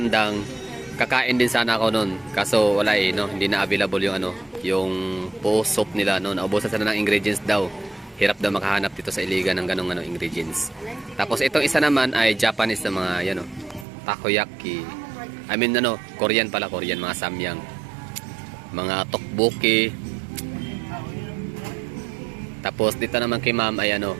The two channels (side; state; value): left; drops out; at 13.9 s